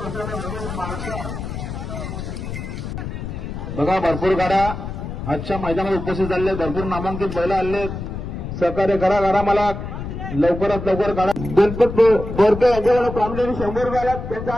भरपूर गाड्या आजच्या मैदानात उपस्थित झाले, भरपूर नामांकित बैल आले. सहकार्य करा मला लवकरात लवकर काढा. गणपत बोरके यांच्याकडे प्रामुख्याने 100 रुपये आल्यात, त्यांचा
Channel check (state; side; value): noise; left; rumble, 7 dB below the sound